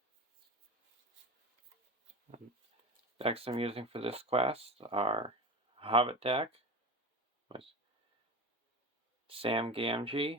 The decks I'm using for this quest are a Hobbit deck with Sam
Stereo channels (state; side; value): normal; both; correlation 0.27